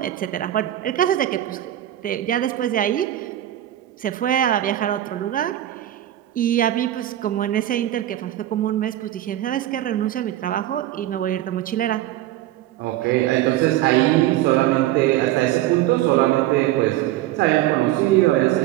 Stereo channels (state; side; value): quieter; left; 13.8 dB